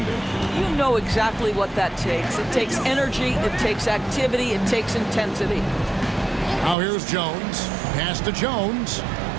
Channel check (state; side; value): drops out; left; at 6.8 s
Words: You know exactly what that takes. It takes energy, it takes activity, it takes intensity. Now here's Jones. Pass to Jones.